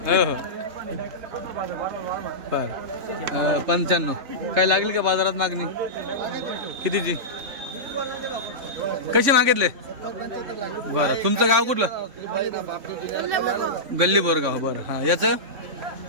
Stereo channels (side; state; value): left; late; 3.6 ms